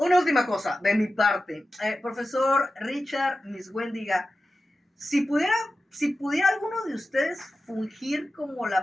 última cosa de mi parte. Profesor Richard Miswendiga, si pudiera alguno de ustedes fungir como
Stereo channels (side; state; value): both; normal; correlation 0.93